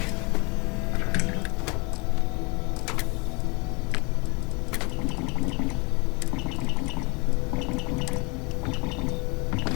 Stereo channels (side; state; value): right; quieter; 29.4 dB